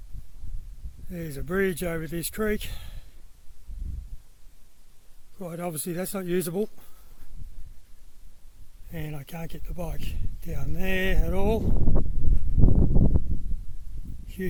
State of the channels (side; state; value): both; identical; correlation 1.00